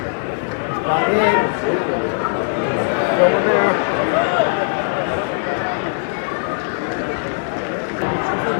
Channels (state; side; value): silent; right; digital silence